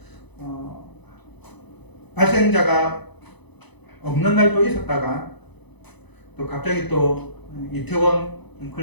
발생자가 없는 날도 있었다가 또 갑자기 또 이태원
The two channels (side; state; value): right; late; 0.99 ms